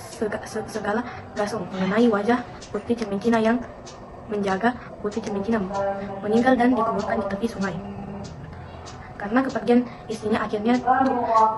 segala gasong mengenai wajah Putri Cemincina yang menjaga Putri Cemincina meninggal dan dikuburkan di tepi sungai. Karena kepergian istrinya, akhirnya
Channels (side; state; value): both; identical; correlation 1.00